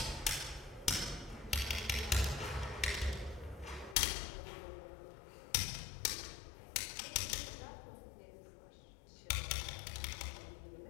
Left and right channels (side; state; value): right; drops out; at 4.0 s